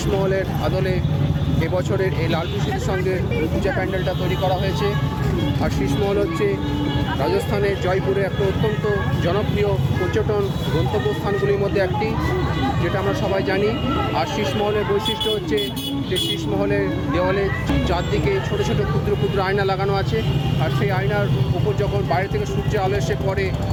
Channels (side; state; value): both; identical; correlation 1.00